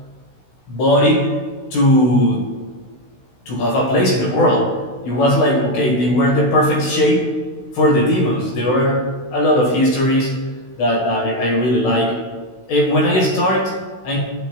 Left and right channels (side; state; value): right; late; 16 ms